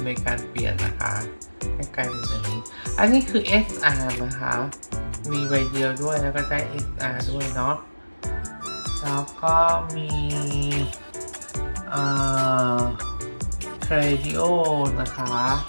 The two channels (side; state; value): both; inverted; correlation -1.00